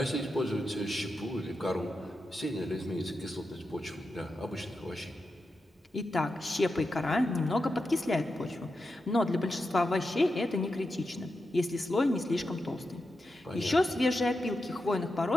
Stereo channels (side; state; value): both; normal; correlation 0.89